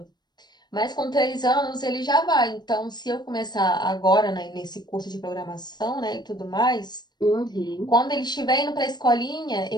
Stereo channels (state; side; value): late; right; 0.21 ms